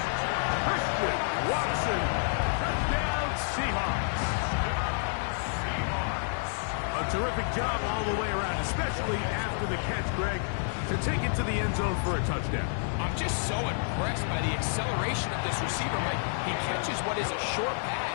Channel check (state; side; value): silent; right; 58 dB below the other